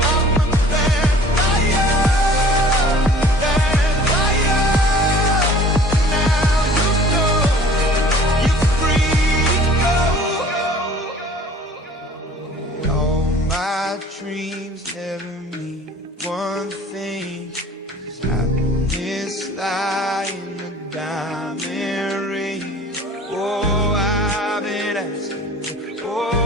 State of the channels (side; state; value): both; normal; correlation 0.48